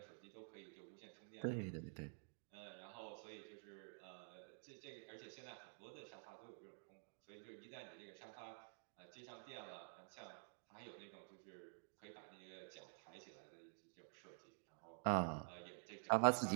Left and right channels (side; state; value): left; silent; digital silence